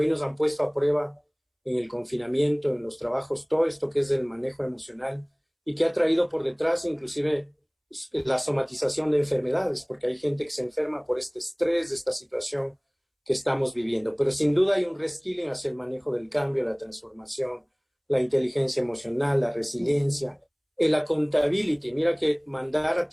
nos han puesto a prueba en el confinamiento, en los trabajos, todo esto que es el manejo emocional y que ha traído por detrás inclusive la somatización de enfermedades, porque hay gente que se enferma por este estrés de esta situación que estamos viviendo. Pero sin duda hay un reskilling hacia el manejo del cambio, la transformación, la inteligencia emocional, la resiliencia, el accountability. Mira que mandar a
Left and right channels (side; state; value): both; identical; correlation 1.00